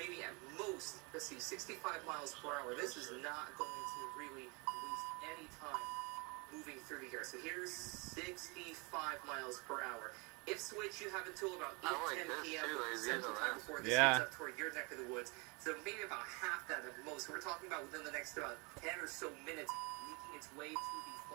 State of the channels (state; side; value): quieter; left; 30.0 dB